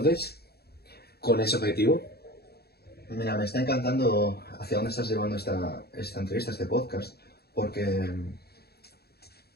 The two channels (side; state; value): right; late; 0.46 ms